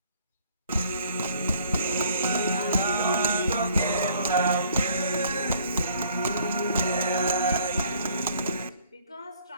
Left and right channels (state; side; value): inverted; both; correlation -0.60